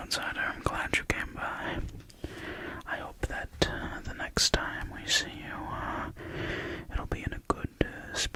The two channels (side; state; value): both; identical; correlation 1.00